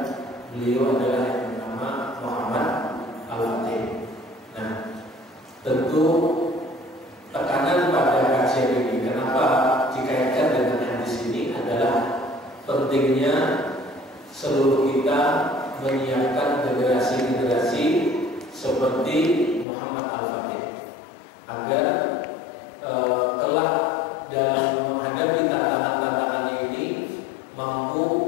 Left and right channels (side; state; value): right; drops out; at 19.7 s